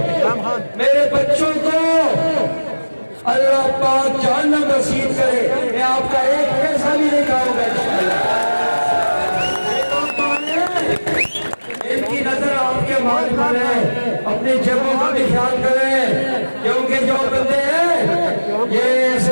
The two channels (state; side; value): inverted; both; correlation -1.00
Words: मेरे बच्चों को अल्लाह पाक जहन्नम नसीब करे। मैं आपका एक पैसा भी नहीं खाऊंगा इंशाअल्लाह। इनकी नजर आपके माल पर है, अपनी जगहों का भी ख्याल करें, क्योंकि जो बंदे हैं ये